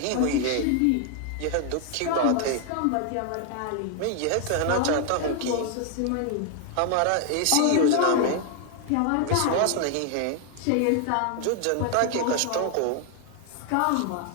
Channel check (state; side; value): different; both; correlation 0.00